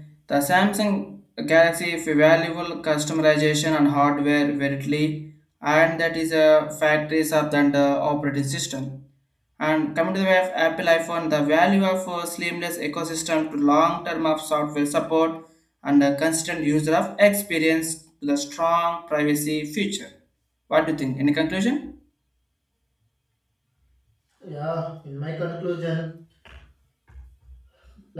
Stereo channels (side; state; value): both; identical; correlation 1.00